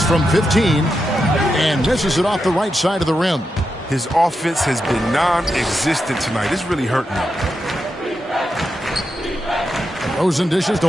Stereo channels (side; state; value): both; normal; correlation 0.87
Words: from 15 and misses it off the right side of the rim. His offense has been non-existent tonight. It's really hurting him. Rosen dishes to